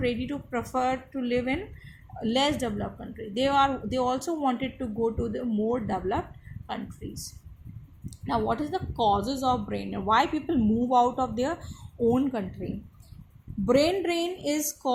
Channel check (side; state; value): both; identical; correlation 1.00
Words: ready to prefer to live in less developed country. They also wanted to go to the more developed countries. Now, what is the causes of brain drain? Why people move out of their own country? Brain drain is